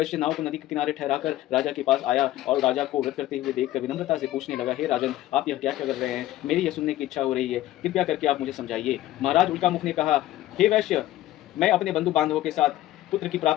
नाव को नदी के किनारे ठहराकर राजा के पास आया और राजा को व्रत करते हुए देखकर विनम्रता से पूछने लगा, हे राजन, आप यह क्या कर रहे हैं? मेरी यह सुनने की इच्छा हो रही है, कृपया करके आप मुझे समझाइए। महाराज उल्कामुख ने कहा, हे वैश्य, मैं अपने बंधु बांधवों के साथ पुत्र की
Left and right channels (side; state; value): right; quieter; 14.8 dB